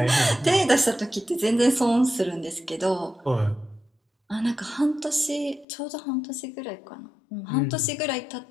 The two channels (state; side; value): drops out; right; at 5.7 s